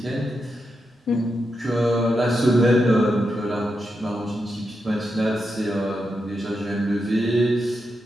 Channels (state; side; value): normal; both; correlation 0.86